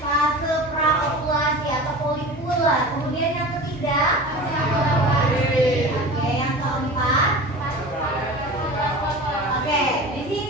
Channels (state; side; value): normal; both; correlation 0.35